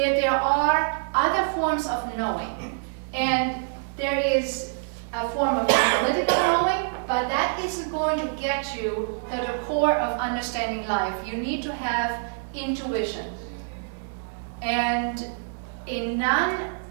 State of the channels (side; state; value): left; silent; digital silence